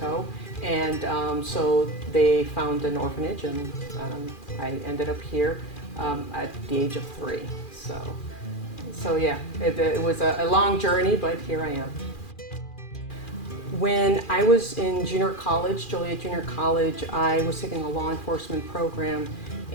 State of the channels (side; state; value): right; late; 2.4 ms